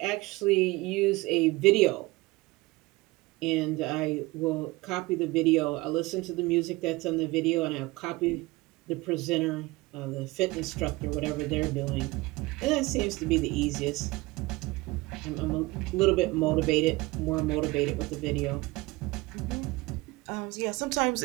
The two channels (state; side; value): quieter; left; 21.7 dB